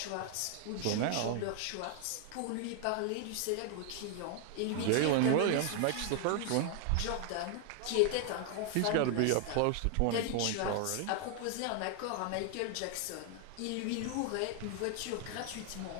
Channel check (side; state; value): both; different; correlation 0.00